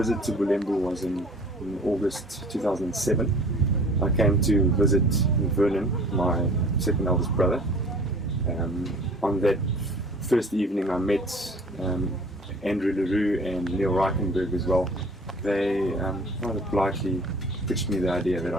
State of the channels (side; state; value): both; normal; correlation 0.48